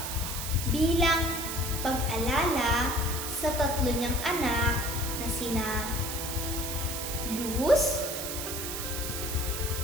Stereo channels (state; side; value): noise; right; hiss, 5 dB below the sound